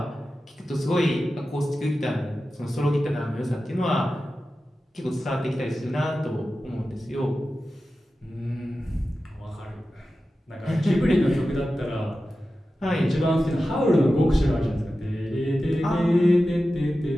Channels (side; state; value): both; normal; correlation 0.93